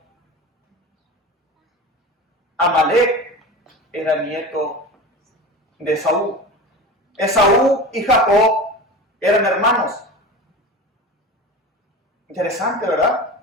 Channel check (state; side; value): normal; both; correlation 0.31